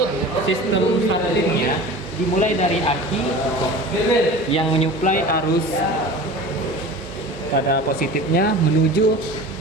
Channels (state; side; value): normal; both; correlation 0.37